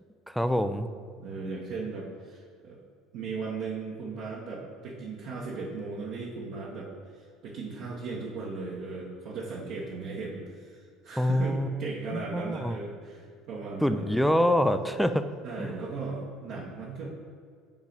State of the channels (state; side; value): normal; both; correlation 0.82